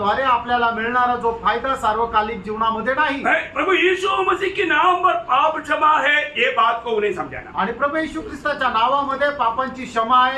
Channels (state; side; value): identical; both; correlation 1.00